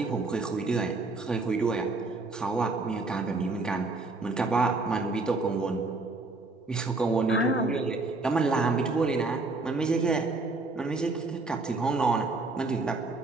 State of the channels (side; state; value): left; quieter; 3.5 dB